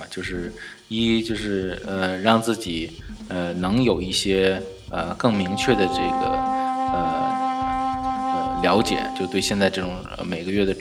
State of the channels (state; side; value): identical; both; correlation 1.00